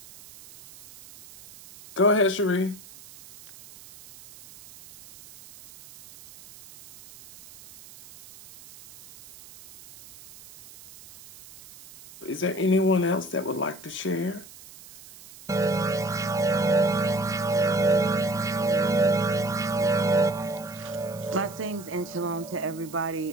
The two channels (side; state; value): right; noise; hiss, 20 dB below the sound